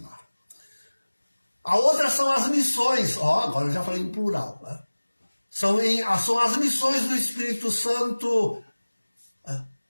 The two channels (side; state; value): both; inverted; correlation -1.00